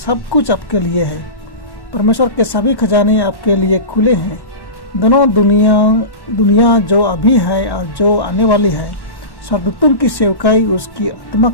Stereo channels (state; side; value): late; right; 1.1 ms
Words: कुछ आपके लिए है। परमेश्वर के सभी खजाने आपके लिए खुले हैं। दोनों दुनिया जो अभी है और जो आने वाली है, स्वर्गदूतों की सेवकाई, उसकी आत्मा